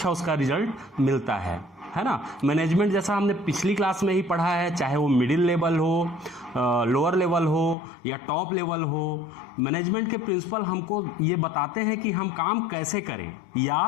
उसका रिजल्ट मिलता है ना। मैनेजमेंट जैसा हमने पिछली क्लास में ही पढ़ा है, चाहे वो मिडिल लेवल हो, लोअर लेवल हो या टॉप लेवल हो, मैनेजमेंट के प्रिंसिपल हमको ये बताते हैं कि हम काम कैसे करें या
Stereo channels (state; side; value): drops out; right; at 7.8 s